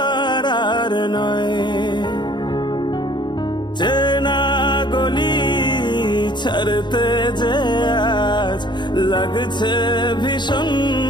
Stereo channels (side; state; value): right; late; 0.22 ms